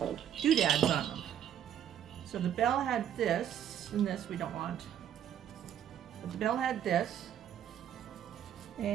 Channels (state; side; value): quieter; left; 10.0 dB